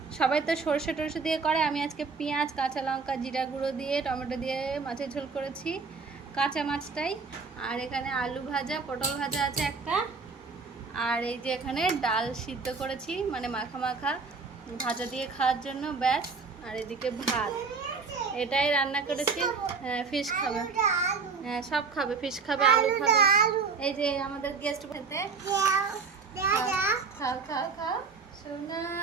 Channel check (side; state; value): left; quieter; 4.9 dB